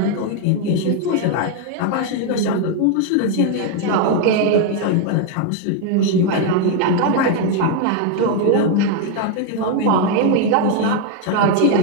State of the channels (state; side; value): different; both; correlation 0.01